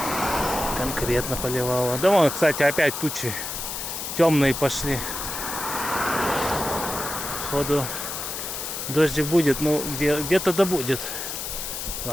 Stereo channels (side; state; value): left; noise; hiss, 5 dB below the sound